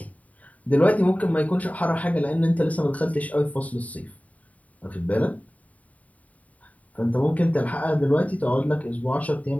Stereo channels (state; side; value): late; right; 0.070 ms